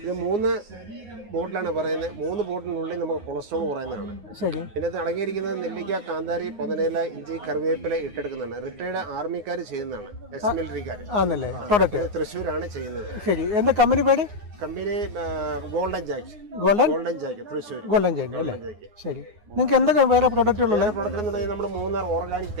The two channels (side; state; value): left; late; 9.6 ms